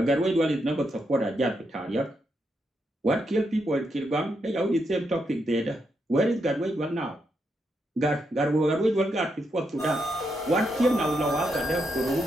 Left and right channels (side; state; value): both; normal; correlation 0.81